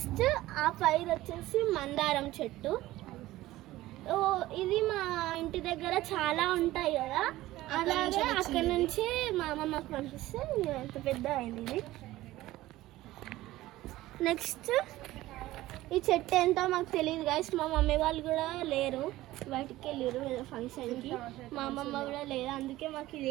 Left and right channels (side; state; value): left; quieter; 16.6 dB